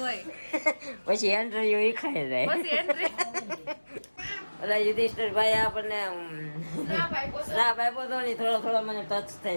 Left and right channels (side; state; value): both; inverted; correlation -1.00